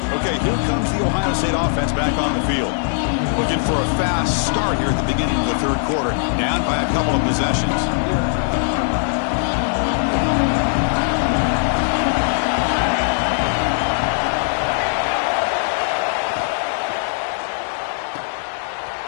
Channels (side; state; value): right; silent; 66 dB below the other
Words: Okay, here comes the Ohio State offense back on the field. Looking for a fast start here at the beginning of the third quarter. Down by a couple of possessions.